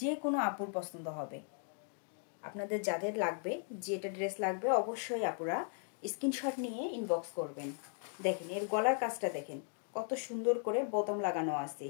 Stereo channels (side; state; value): right; silent; 53 dB below the other